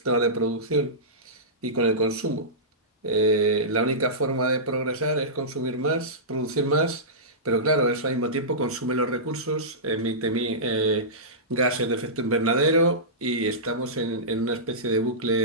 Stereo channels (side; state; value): both; normal; correlation -0.18